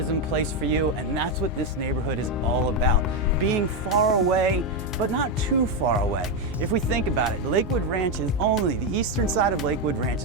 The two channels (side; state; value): both; normal; correlation 0.07